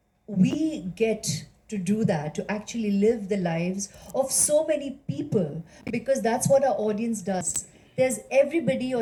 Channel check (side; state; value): both; identical; correlation 1.00